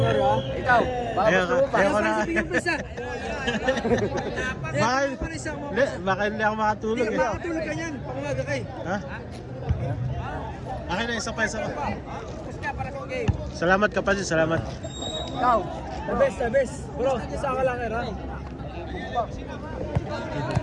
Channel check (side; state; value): both; identical; correlation 1.00